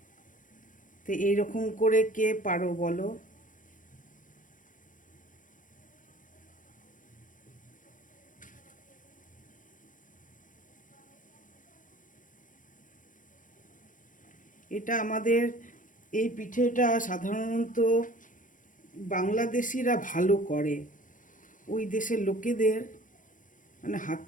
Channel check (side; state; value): right; late; 0.38 ms